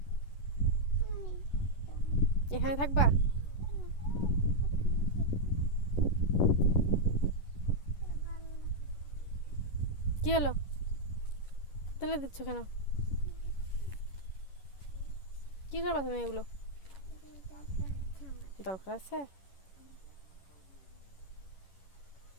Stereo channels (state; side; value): late; right; 11 ms